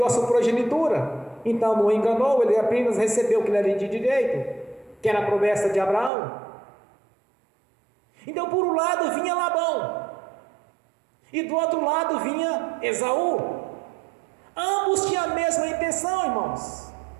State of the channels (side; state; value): left; drops out; at 6.1 s